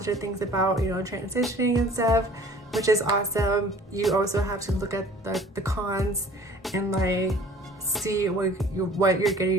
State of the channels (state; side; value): normal; both; correlation 0.49